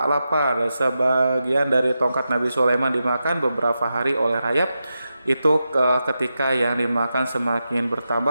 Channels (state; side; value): inverted; both; correlation -0.89